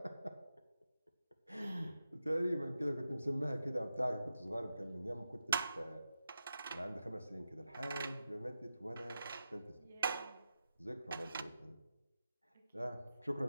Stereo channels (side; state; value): both; inverted; correlation -0.89